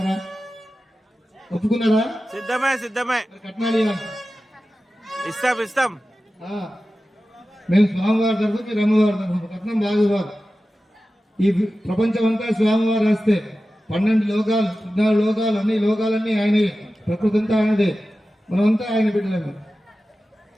ఒప్పుకున్నారా? సిద్ధమే. కట్నాలు ఇవ్వాలి. ఇస్తాం. మేము స్వామివారి తరఫు, మీరు అమ్మవారి తరఫు. కట్నం బాగా ఇవ్వాలి. ఈ ప్రపంచం అంతా స్వామివారు వస్తే 12 లోకాలు 14 లోకాలు అన్ని లోకాలన్నీ ఆయనే. ప్రకృతి అంతా ఆయనదే. మనమంతా ఆయన బిడ్డలేము.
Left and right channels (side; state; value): both; normal; correlation 0.94